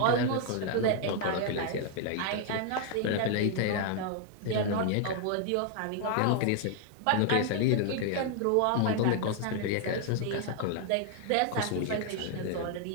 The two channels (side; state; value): both; different; correlation 0.00